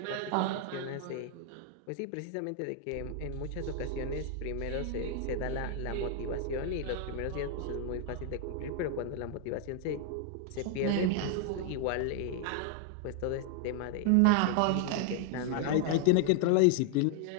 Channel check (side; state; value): both; different; correlation 0.00